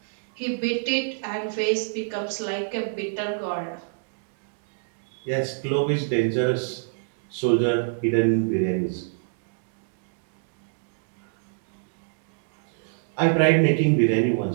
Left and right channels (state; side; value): silent; left; digital silence